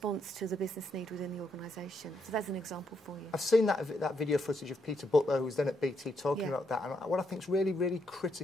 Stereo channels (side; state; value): both; normal; correlation 0.78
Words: to the business need within the organisation. So that's an example for you. I've seen that video footage of Peter Butler, who was then at BT, talking about that. And what I think is really, really